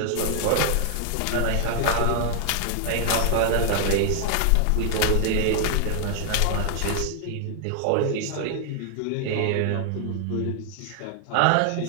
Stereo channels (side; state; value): both; different; correlation 0.00